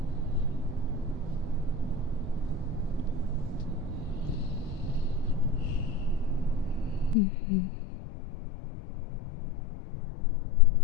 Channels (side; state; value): right; drops out; at 7.2 s